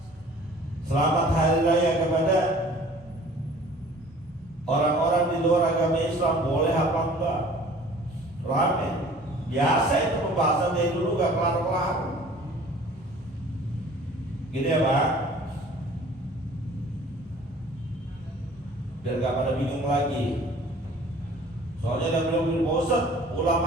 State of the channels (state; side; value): normal; both; correlation 0.49